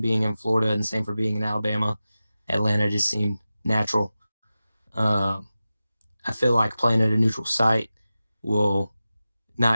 being in Florida and Samford being in Alabama, Atlanta just seemed natural. I feel like playing at a neutral site will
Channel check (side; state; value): both; inverted; correlation -0.95